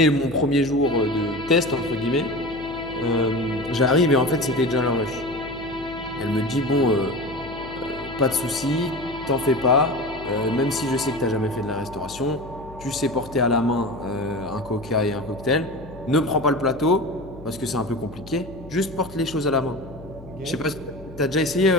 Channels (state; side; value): noise; left; hum, 17 dB below the sound